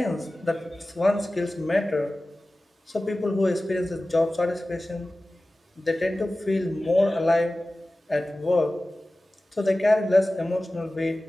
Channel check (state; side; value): normal; both; correlation 0.96